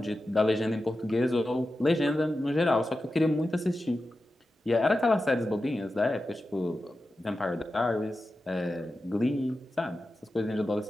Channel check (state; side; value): normal; both; correlation 0.92